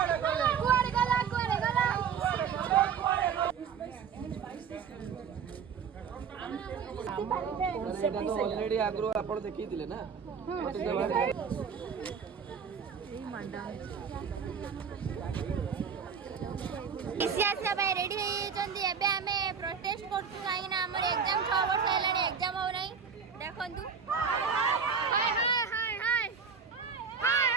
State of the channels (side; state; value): left; quieter; 6.5 dB